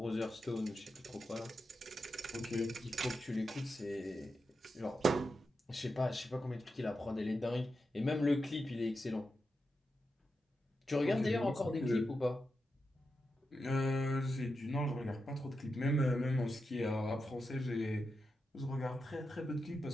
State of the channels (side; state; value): both; normal; correlation 0.88